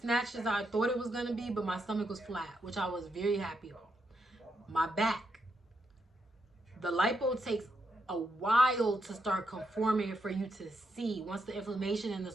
as I thought it was going to be, but my stomach was flat, which I was very happy about. My back, the lipo takes a while to start conforming for you to see. Once the inflammation and the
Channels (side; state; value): both; normal; correlation 0.81